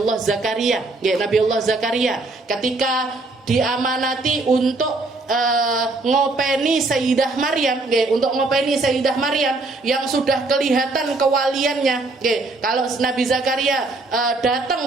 Zakaria ketika diamanati untuk ngopeni Sayyidah Maryam, untuk ngopeni Sayyidah Maryam yang sudah kelihatan kewaliannya. Kalau Nabi Zakaria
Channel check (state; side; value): quieter; left; 3.3 dB